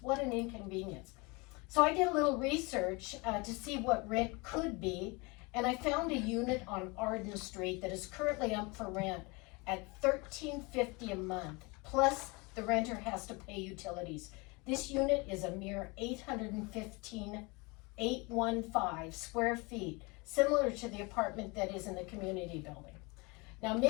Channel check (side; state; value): right; quieter; 27.2 dB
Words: What an inconvenience. So I did a little research to see what rent could be, and I found a unit on Arden Street that is currently up for rent at $13.50 a month, plus the renter has to pay utilities. This unit is a mere 815 square feet, similar to the apartment that is in the community building. Now,